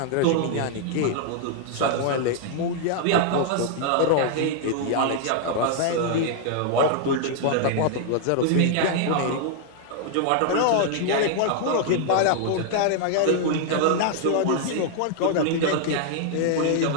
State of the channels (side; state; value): both; different; correlation 0.00